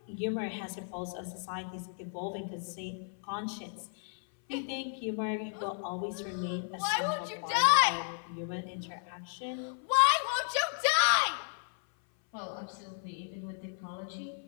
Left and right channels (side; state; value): right; silent; 55 dB below the other